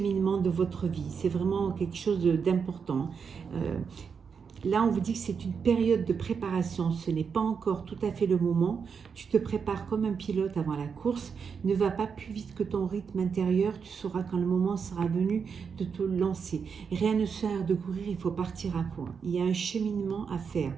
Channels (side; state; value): left; quieter; 6.2 dB